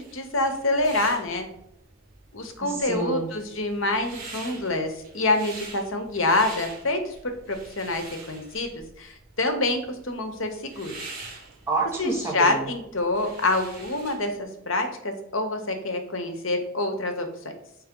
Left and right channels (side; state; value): both; normal; correlation -0.20